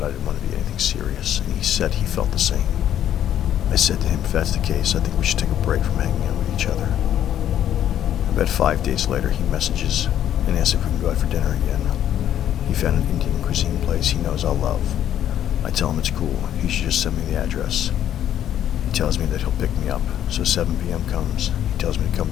I didn't want to be anything serious, and he said he felt the same. I said to him, if that's the case, I think we should take a break from hanging out with each other. About 5 days later, he messages and asks if we can go out for dinner again. He found an Indian cuisine place he knows I'll love. I tell him it's cool, he should just send me the address. He tells me that he'll pick me up, so 7 p.m. comes. He tells me to come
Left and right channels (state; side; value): quieter; right; 10.8 dB